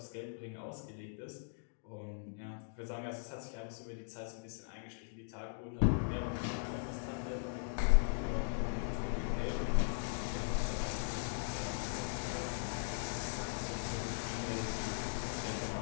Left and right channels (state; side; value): silent; right; digital silence